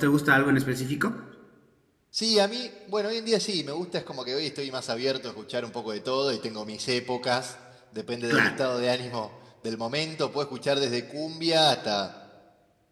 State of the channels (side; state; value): both; identical; correlation 1.00